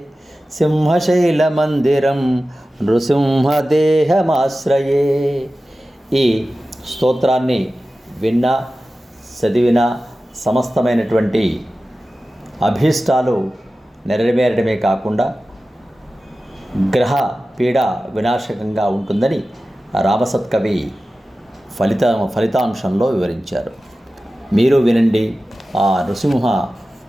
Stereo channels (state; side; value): normal; both; correlation 0.95